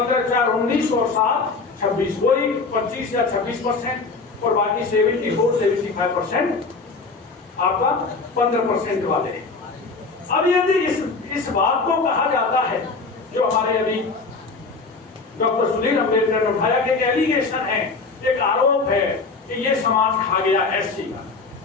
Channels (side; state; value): right; quieter; 4.1 dB